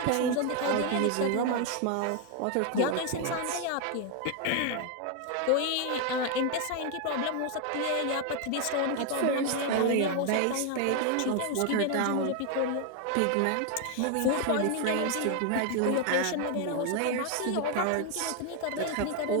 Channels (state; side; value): different; both; correlation 0.01